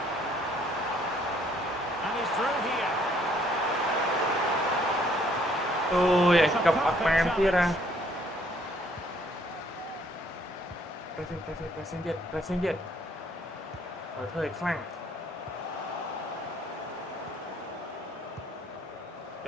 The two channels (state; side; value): normal; both; correlation 0.64